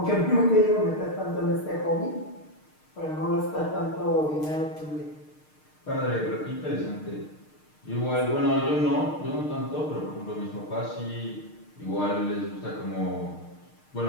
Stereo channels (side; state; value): right; late; 6.5 ms